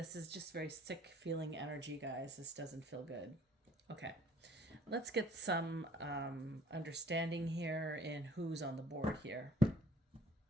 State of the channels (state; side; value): normal; both; correlation 0.56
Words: is just very sick feeling energy, guys. This doesn't feel good. Okay. Let's get some understanding here in who's on the board here.